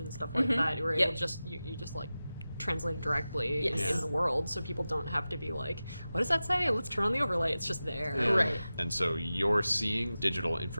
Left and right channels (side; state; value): both; inverted; correlation -0.95